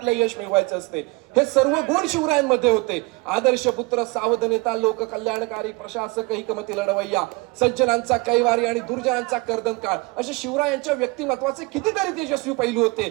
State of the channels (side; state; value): left; quieter; 26.0 dB